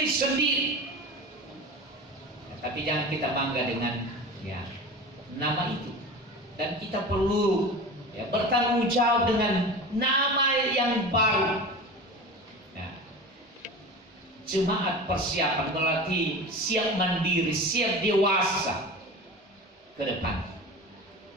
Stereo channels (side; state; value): both; normal; correlation 0.32